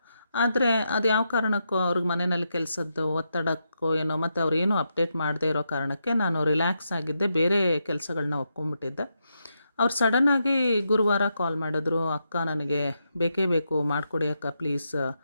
ಆದರೆ ಅದು ಯಾವ ಕಾರಣಕ್ಕೋ ಅವ್ರಿಗೆ ಮನೆಯಲ್ಲಿ ಕೆಲಸದ್ದು ಒತ್ತಡಕ್ಕೋ ಏನೋ, ಮತ್ತು ಅವ್ರು ಏನೂ ಅಪ್ಡೇಟ್ ಮಾಡದೇ ಇರೋ ಕಾರಣಕ್ಕೆ ನಾನು ರಿಲ್ಯಾಕ್ಸ್ ಆಗಿದ್ದೆ, ಬೇರೆ ಕೆಲಸಗಳನ್ನ ಒಪ್ಕೊಂಡ್ಬಿಟ್ಟಿದ್ದೆ. ಅವ್ರು ಸಡನ್ನಾಗಿ ಗುರುವಾರ ಕಾಲ್ ಮಾಡಿದ್ರು, ಅಕ್ಕ ನನಗೆ ಬೇಕೇ ಬೇಕು, ಮಾಡಿಕೊಡಿ ಅಕ್ಕ ಪ್ಲೀಸ್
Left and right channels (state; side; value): inverted; both; correlation -0.84